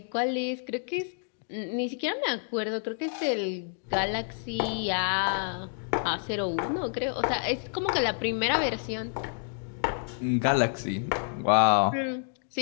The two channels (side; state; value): right; silent; 59 dB below the other